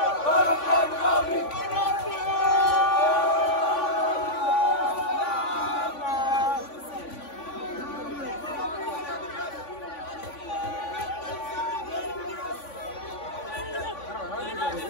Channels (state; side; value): late; right; 3.5 ms